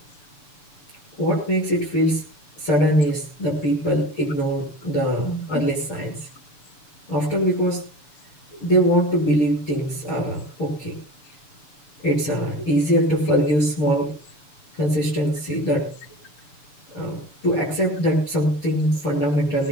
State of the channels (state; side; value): late; right; 6.9 ms